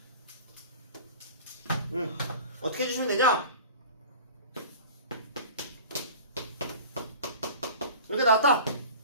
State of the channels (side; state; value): both; inverted; correlation -0.39